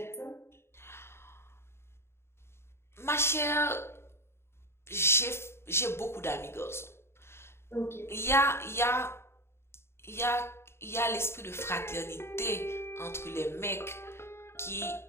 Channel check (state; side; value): late; right; 0.12 ms